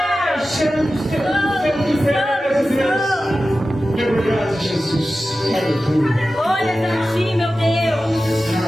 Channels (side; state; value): both; normal; correlation 0.94